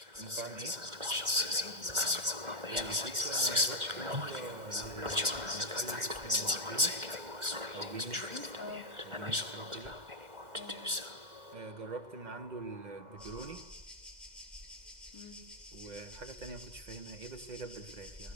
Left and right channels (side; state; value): left; late; 1.4 ms